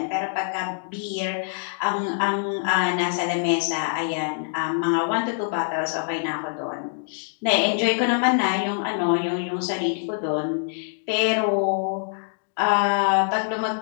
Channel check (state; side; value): silent; right; digital silence